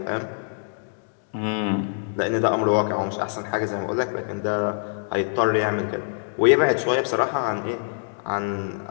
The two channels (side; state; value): right; silent; digital silence